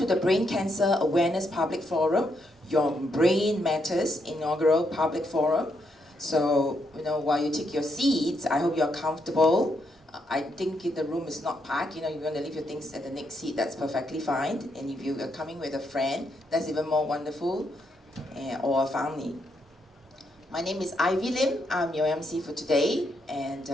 the Brain Cancer Awareness Public Forum, Your Brain Matters inaugural public forum. So, while you take your seats, I hope you're comfortable. I think the room is not packed. If you want to leave your things at the next seat, that's perfectly fine. And if you are coming with a friend, that's even more wonderful, or a family. My name is Ivy Lim. I'm your MC for today, and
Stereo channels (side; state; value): both; normal; correlation 0.78